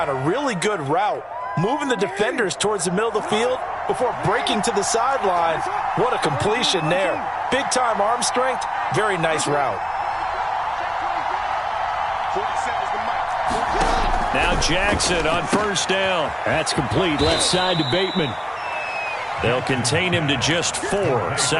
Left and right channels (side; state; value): both; identical; correlation 1.00